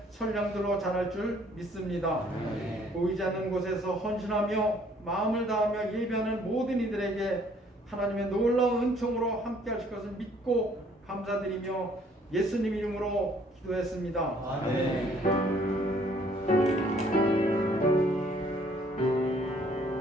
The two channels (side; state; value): both; normal; correlation 0.61